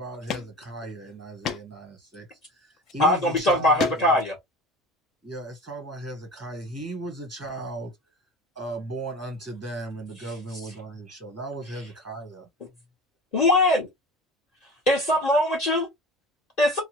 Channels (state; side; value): normal; both; correlation 0.34